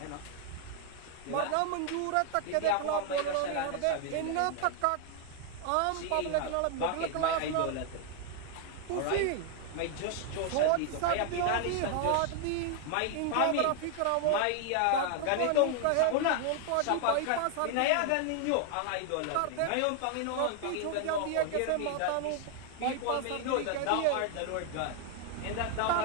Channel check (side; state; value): both; different; correlation 0.00